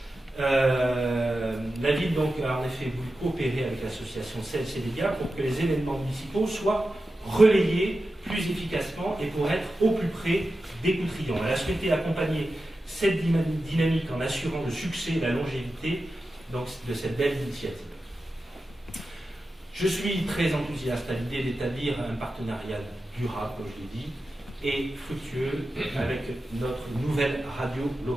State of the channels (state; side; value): normal; both; correlation 0.92